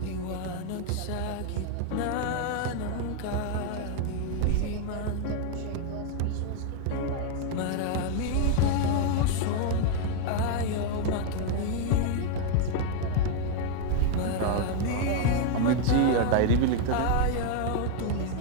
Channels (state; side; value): different; both; correlation 0.00